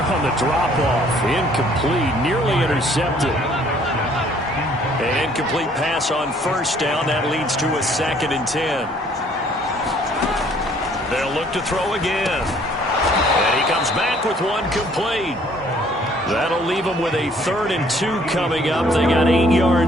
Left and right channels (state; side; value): normal; both; correlation 0.60